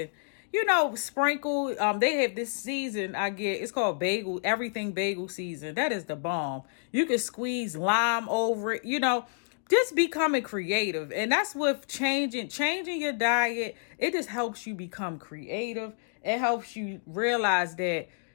sprinkle. They have this season it's called everything bagel season. That is the bomb. You can squeeze lime over it, just becoming creative. And that's with changing your diet. It just helps you become creative. It helps you realize that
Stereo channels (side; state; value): right; silent; digital silence